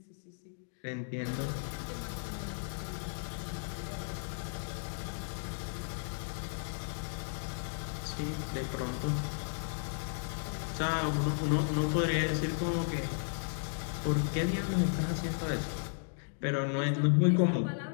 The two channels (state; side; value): silent; right; digital silence